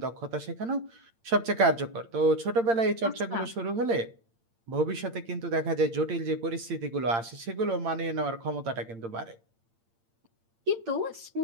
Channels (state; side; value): late; left; 8.8 ms